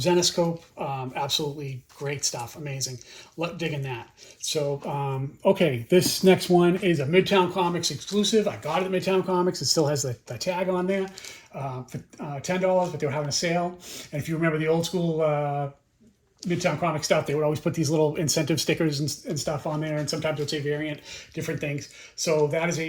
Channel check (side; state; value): both; identical; correlation 1.00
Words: Absolutely great stuff. Amazing. Digging that. So, okay, this next one is a Midtown Comics exclusive. I got it at Midtown Comics. It still has the tag on there for $10, but they were having a sale. And if you remember the old school Midtown Comic stuff, they would always put these little incentive stickers and stuff on there, and sometimes it would say variant, different things. So that is